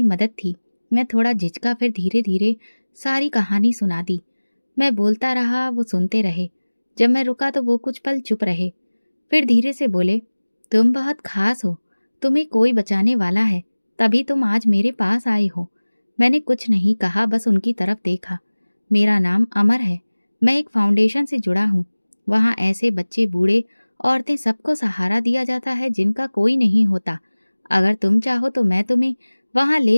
मदद थी। मैं थोड़ा झिझका, फिर धीरे धीरे सारी कहानी सुना दी। मैं बोलता रहा, वो सुनते रहे। जब मैं रुका तो वो कुछ पल चुप रहे, फिर धीरे से बोले, तुम बहुत खास हो, तुम्हें कोई बचाने वाला है, तभी तुम आज मेरे पास आए हो। मैंने कुछ नहीं कहा, बस उनकी तरफ देखा। मेरा नाम अमर है। मैं एक फाउंडेशन से जुड़ा हूँ। वहाँ ऐसे बच्चे, बूढ़े, औरतें, सबको सहारा दिया जाता है जिनका कोई नहीं होता। अगर तुम चाहो तो मैं तुम्हें वहाँ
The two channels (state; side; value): inverted; both; correlation -1.00